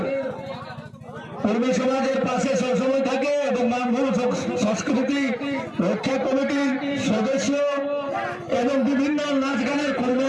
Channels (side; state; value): both; identical; correlation 1.00